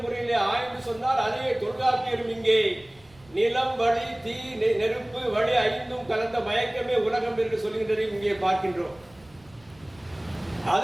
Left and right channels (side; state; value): right; noise; rumble, 27 dB below the sound